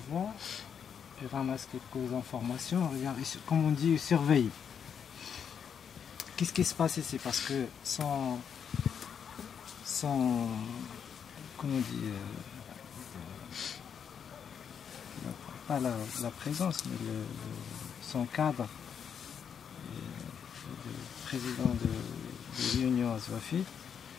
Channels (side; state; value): right; quieter; 7.5 dB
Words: voient, ils ramassent quelques informations, regardent, comme on dit, ils surveillent. Qu'est-ce qui se passe ici? Parce que sans comment on dit, pas la présence, mais son cadre, le président de l'Union Azwafite,